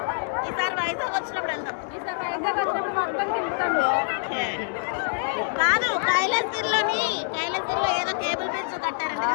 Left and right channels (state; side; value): silent; right; 61 dB below the other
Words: ఈసారి వైజాగ్ వచ్చినప్పుడు వెళ్దాం. ఓకే. కాదు, కైలాసగిరిలో ఏదో కేబుల్ బ్రిడ్జ్ కట్టారంట